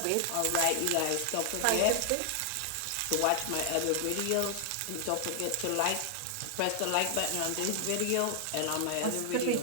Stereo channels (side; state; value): both; different; correlation 0.00